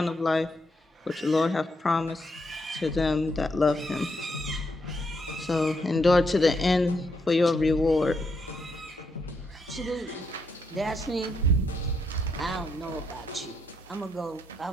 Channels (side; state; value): both; normal; correlation 0.78